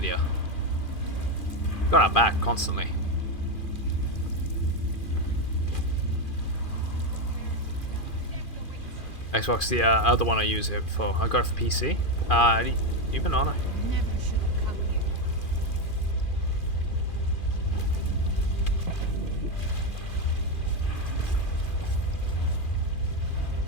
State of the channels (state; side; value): late; right; 2.4 ms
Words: Got her back constantly. Xbox, the other one I use it for. I got it for PC. Even on it.